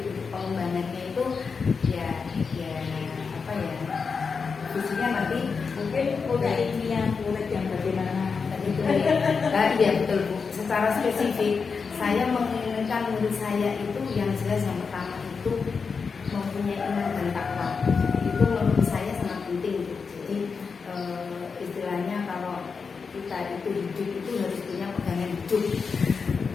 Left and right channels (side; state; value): right; quieter; 5.3 dB